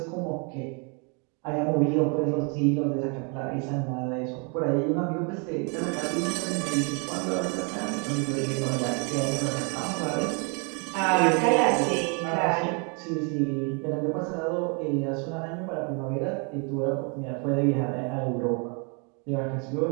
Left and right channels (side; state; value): left; quieter; 35.8 dB